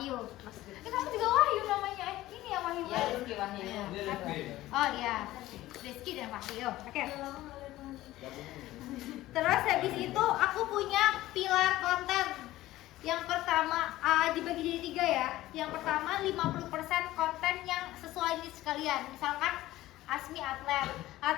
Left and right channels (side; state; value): right; quieter; 16.1 dB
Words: Kamu juga Wahyu namanya. Ini ya Wahyu. Ya, Rizky Wahyu. Oh iya. Rizky dan Wahyu. Oke. Terus habis itu aku punya pilar konten. Yang pertama dibagi jadi 3 ya. Yang pertama 50% konten yang sesuai niche kalian. Misalkan Asmi atlet,